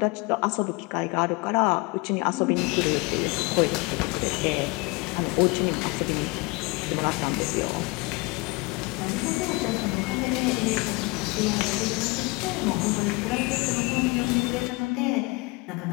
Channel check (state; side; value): quieter; right; 26.7 dB